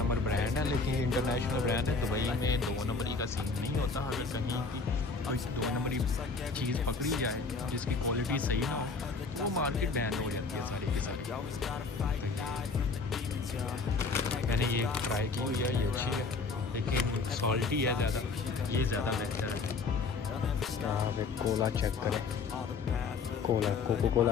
ब्रांड है, लेकिन ये इंटरनेशनल ब्रांड है। दुबई में 2 नंबरी का सीन नहीं होता। अगर कहीं की कोई 2 नंबरी चीज़ पकड़ी जाए जिसकी क्वालिटी सही ना हो वो मार्केट बैन हो जाती है सारी की सारी। मैंने ये ट्राई की हुई है, ये अच्छी है लेकिन सॉल्टी है ज़्यादा, ये ज़्यादा बेहतर है। यहाँ पे कोला चेक करें, कोला कोको कोला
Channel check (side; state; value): right; quieter; 4.4 dB